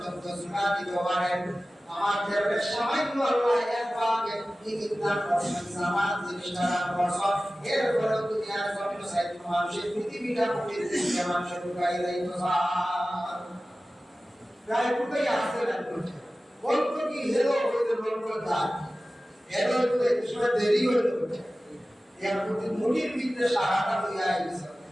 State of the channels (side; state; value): both; normal; correlation 0.96